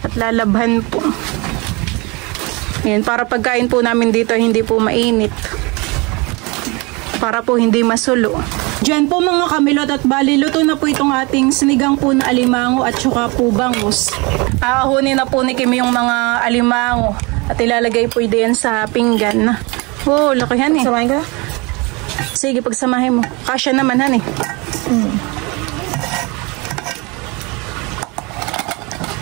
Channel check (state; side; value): quieter; left; 27.2 dB